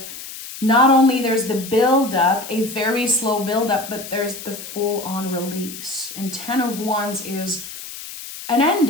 not only there's the build-up, a very slow build-up, but there's the full-on release. And 10 of Wands is an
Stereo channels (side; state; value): left; noise; hiss, 12 dB below the sound